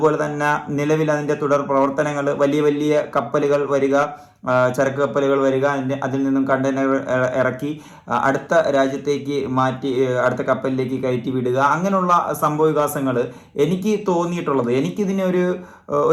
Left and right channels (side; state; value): both; identical; correlation 1.00